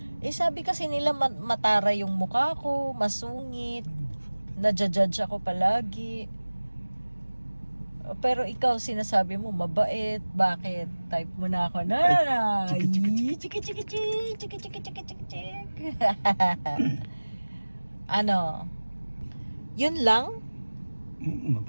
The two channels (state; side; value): inverted; both; correlation -1.00